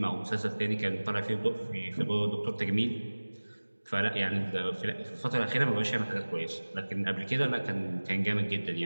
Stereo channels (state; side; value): inverted; both; correlation -1.00